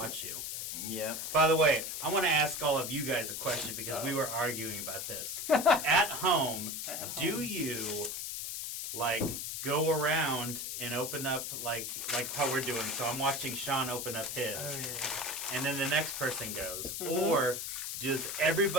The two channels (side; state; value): left; noise; hiss, 4 dB below the sound